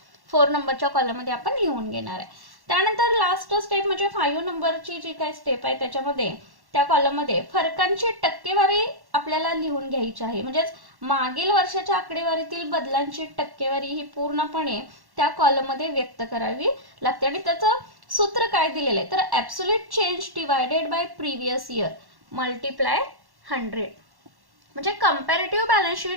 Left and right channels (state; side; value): late; left; 1.1 ms